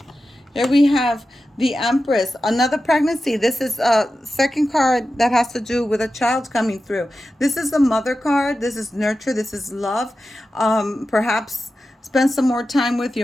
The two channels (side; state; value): both; normal; correlation 0.92